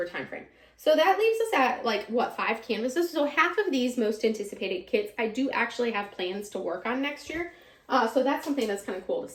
timeframe. So that leaves us at like, what, 5 canvases? So half of these most anticipated kits, I do actually have plans to work on next year. So that's something that's kind of cool to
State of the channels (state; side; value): identical; both; correlation 1.00